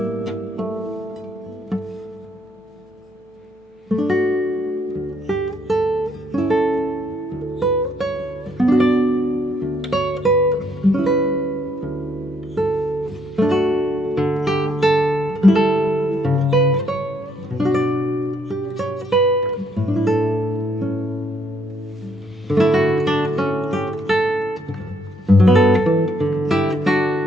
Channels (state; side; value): normal; both; correlation 0.71